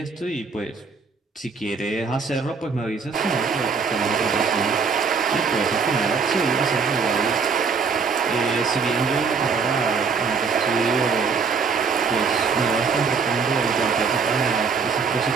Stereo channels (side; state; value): left; quieter; 5.3 dB